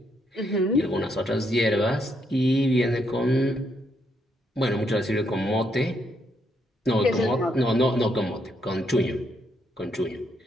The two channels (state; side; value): normal; both; correlation 0.76